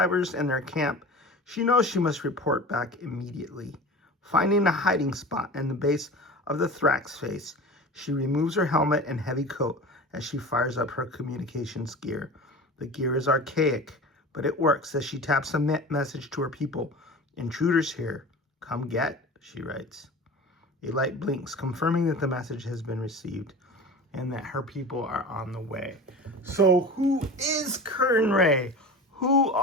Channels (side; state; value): both; normal; correlation 0.34